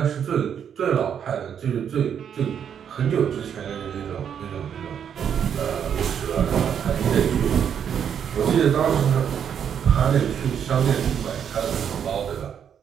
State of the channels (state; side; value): quieter; left; 8.3 dB